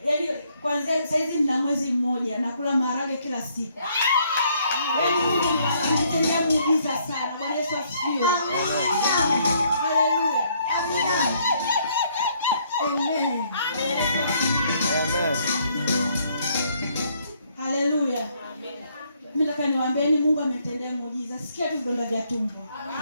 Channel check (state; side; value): inverted; both; correlation -0.68